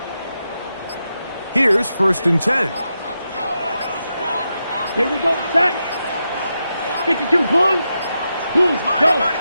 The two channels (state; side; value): inverted; both; correlation -0.87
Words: Here's 1st and 10. Here we go, set. 52, Blues. Blues, go.